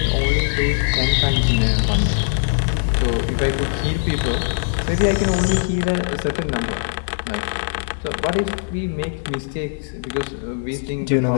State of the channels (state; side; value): silent; right; 65 dB below the other